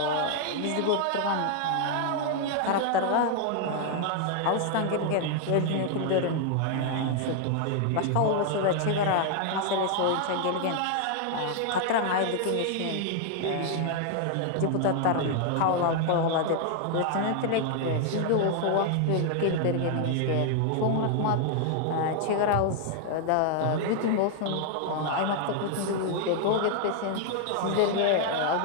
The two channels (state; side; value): different; both; correlation 0.00